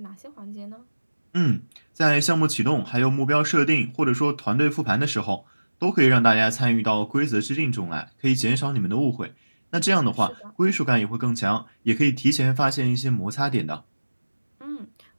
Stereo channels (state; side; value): inverted; both; correlation -1.00